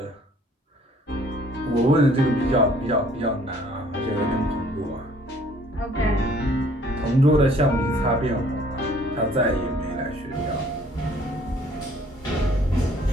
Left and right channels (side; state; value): both; normal; correlation 0.58